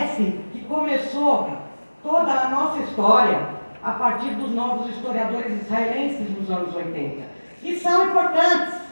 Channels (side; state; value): both; inverted; correlation -1.00